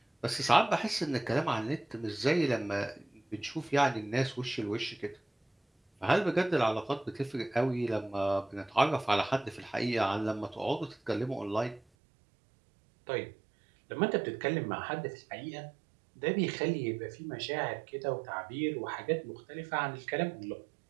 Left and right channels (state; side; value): drops out; left; at 11.8 s